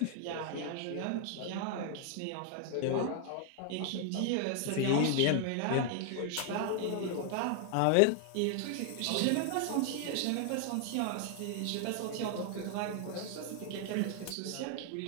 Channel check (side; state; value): both; different; correlation 0.00